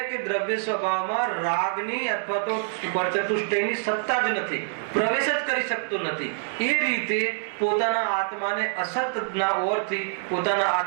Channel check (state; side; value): silent; left; 61 dB below the other